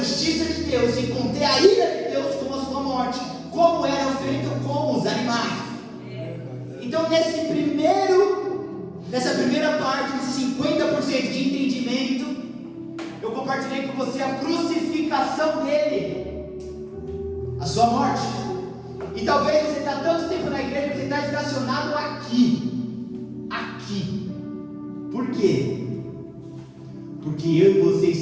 de Deus e conter a ira de Deus com a sua morte, como era feito com os animais. Então nessa primeira parte, nesse 50% de entendimento, eu compartilhei com você a crucificação dele, a sua morte. E talvez você está tanto tempo na igreja que você está estacionado aqui. Por quê? Porque eu e você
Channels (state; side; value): identical; both; correlation 1.00